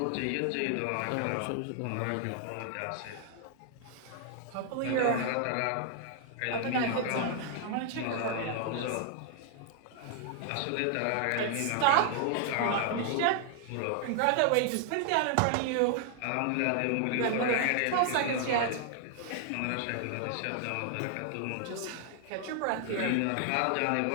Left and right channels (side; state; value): both; different; correlation 0.00